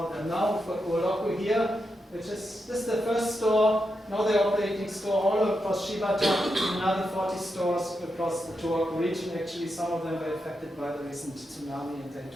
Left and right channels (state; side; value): normal; both; correlation 0.86